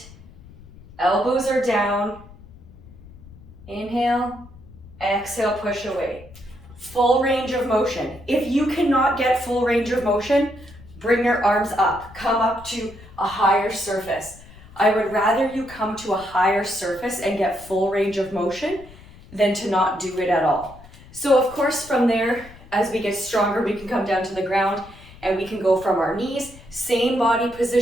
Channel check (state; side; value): noise; left; rumble, 20 dB below the sound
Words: Elbows are down. Inhale, exhale, push away. Full range of motion. If you cannot get full range of motion, bring your arms up. Come up to a higher surface. I would rather you come to a higher surface and get full range of motion than to not do it at all. So of course from there, as we get stronger, we can come down to the ground and we can go from our knees, same body